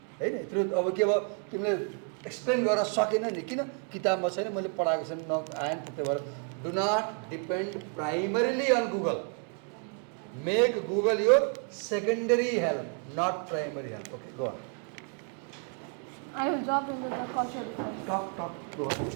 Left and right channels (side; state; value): left; quieter; 39.6 dB